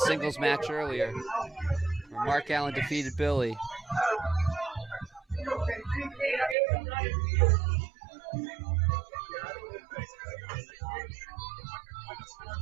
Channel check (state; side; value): drops out; left; at 6.6 s